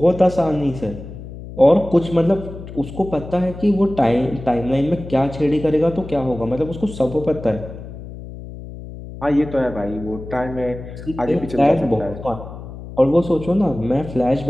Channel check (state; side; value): noise; left; hum, 12 dB below the sound